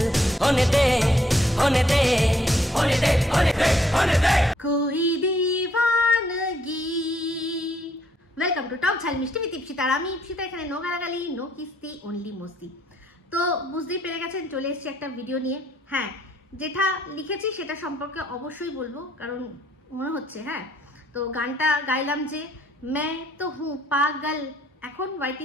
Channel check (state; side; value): normal; both; correlation 0.68